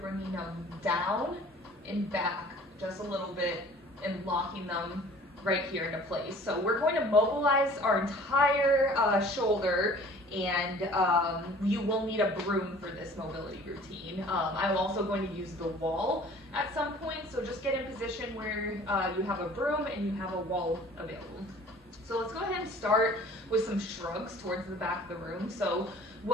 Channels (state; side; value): normal; both; correlation 0.49